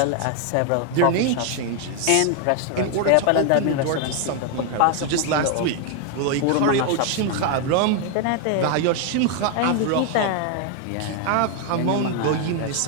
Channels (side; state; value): both; different; correlation 0.01